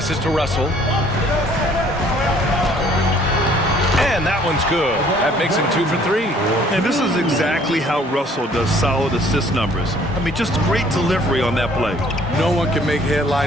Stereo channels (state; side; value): normal; both; correlation 0.58